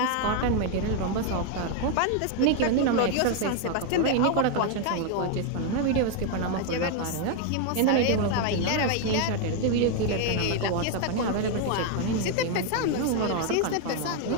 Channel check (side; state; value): both; different; correlation 0.01